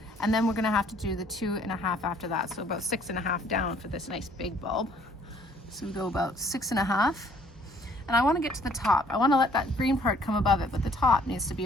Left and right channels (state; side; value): normal; both; correlation 0.60